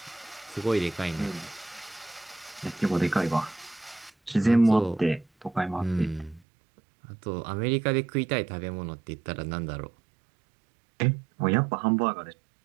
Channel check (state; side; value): drops out; left; at 6.4 s